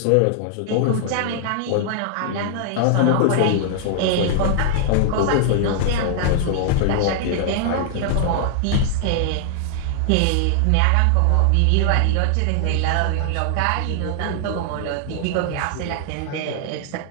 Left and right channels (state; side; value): different; both; correlation -0.01